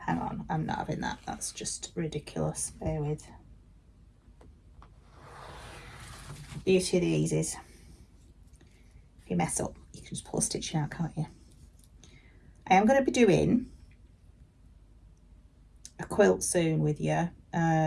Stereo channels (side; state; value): both; identical; correlation 1.00